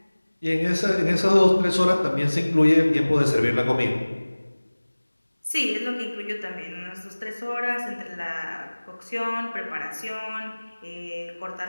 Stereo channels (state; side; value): inverted; both; correlation -1.00